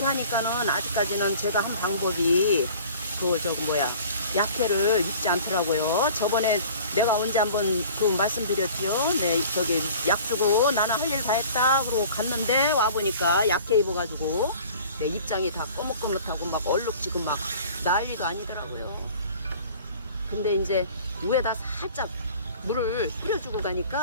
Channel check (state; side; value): inverted; both; correlation -0.46